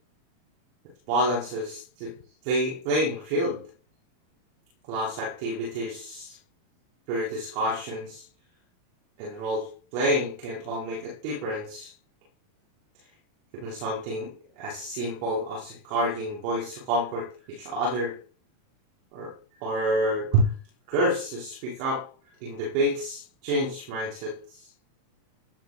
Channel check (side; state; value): left; late; 38 ms